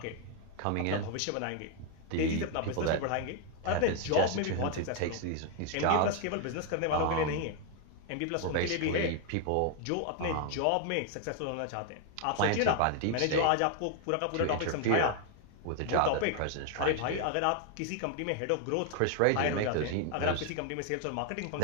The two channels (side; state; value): both; different; correlation 0.00